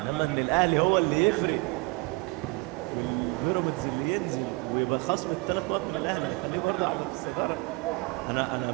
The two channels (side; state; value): left; quieter; 26.3 dB